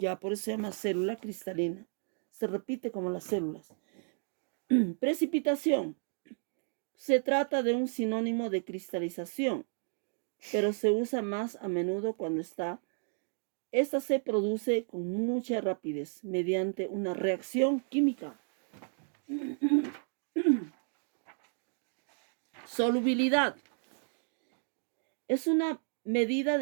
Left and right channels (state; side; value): silent; left; 56 dB below the other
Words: por eso se llama célula cristalina. Se repite como las células. Precipitación. Se trata de un sinónimo de cristalización, pero se usa más a menudo cuando esta se produce con mucha rapidez mediante una reacción química. Solubilidad. Es una medida